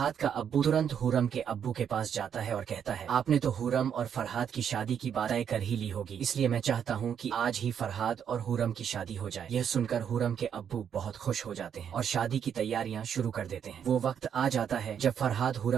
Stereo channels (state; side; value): quieter; left; 8.3 dB